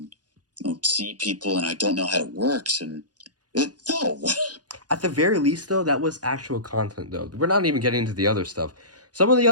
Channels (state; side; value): late; left; 0.69 ms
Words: see people, and I don't know how it works, and no. At the very least, though, that was actual content. Though we're not even getting into the other stuff. Some of the